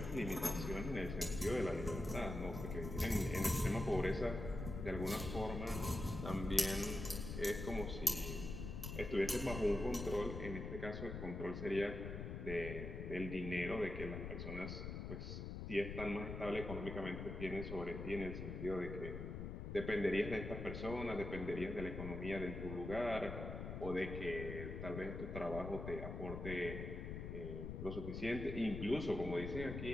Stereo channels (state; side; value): noise; left; rumble, 6 dB below the sound